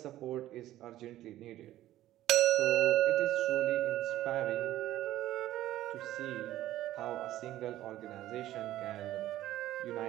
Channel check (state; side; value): quieter; left; 14.2 dB